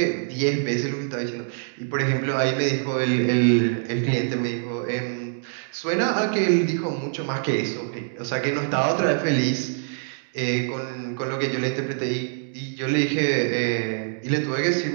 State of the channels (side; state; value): left; silent; digital silence